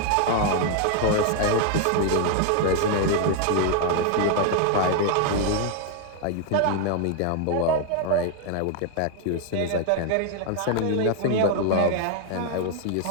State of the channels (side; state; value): both; different; correlation 0.00